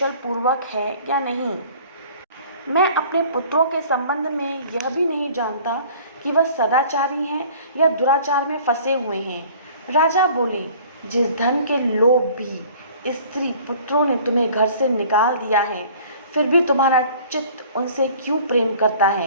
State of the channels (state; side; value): inverted; both; correlation -0.50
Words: पूर्वक है या नहीं। मैं अपने पुत्रों के संबंध में यह भी नहीं जानता कि वह सदाचारी हैं या दुराचार में फंसे हुए हैं। राजा बोले, जिस धन के लोभ भी स्त्री पुत्रों ने तुम्हें घर से निकाल दिया है, फिर भी तुम्हारा चित्त उनसे क्यों प्रेम करता